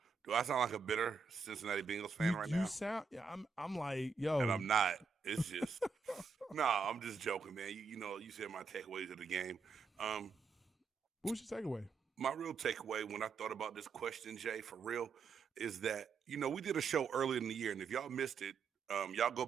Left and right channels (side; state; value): left; quieter; 5.2 dB